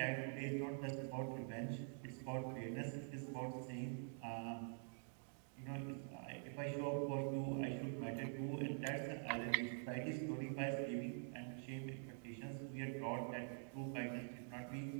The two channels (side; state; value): left; silent; digital silence